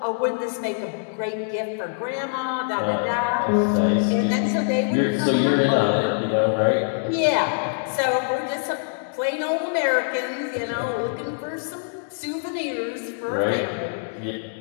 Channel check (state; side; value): silent; right; digital silence